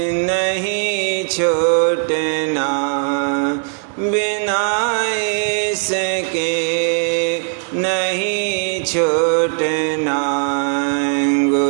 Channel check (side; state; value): left; silent; 58 dB below the other